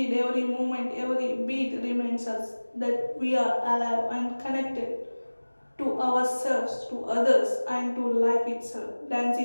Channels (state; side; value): inverted; both; correlation -1.00